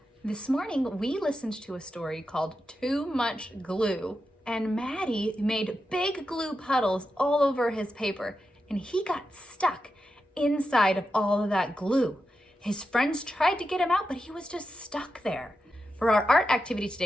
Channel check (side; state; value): both; normal; correlation 0.89